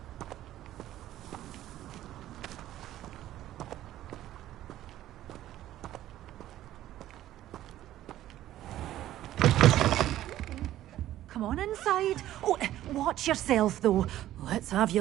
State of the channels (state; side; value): quieter; left; 13.5 dB